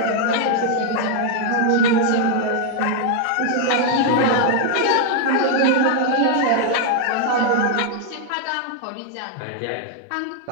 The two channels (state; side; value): different; both; correlation 0.00